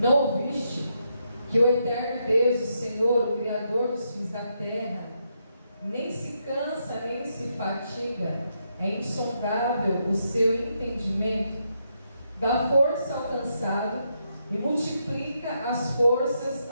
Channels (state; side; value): inverted; both; correlation -0.80